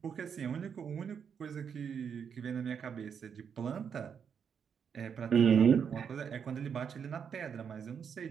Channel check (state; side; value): quieter; left; 7.2 dB